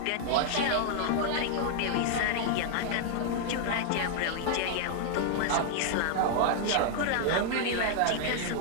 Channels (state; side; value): different; both; correlation -0.01